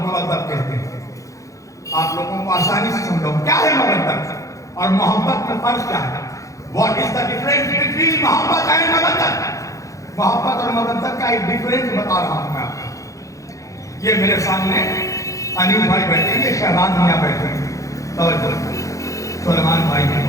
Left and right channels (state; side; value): late; right; 0.16 ms